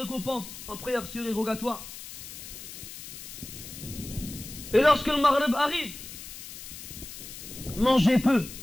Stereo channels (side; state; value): left; noise; hiss, 12 dB below the sound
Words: en prière surérogatoire. Et lorsque le Maghrib arrive, mangez peu.